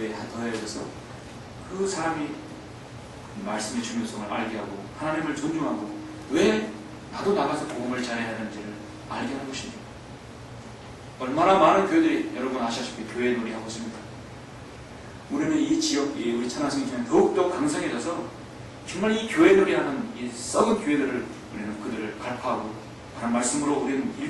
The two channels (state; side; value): identical; both; correlation 1.00